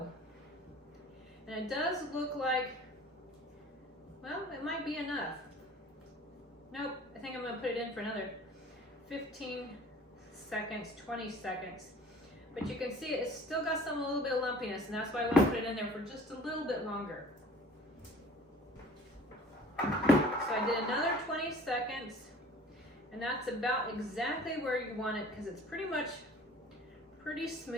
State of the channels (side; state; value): both; normal; correlation 0.48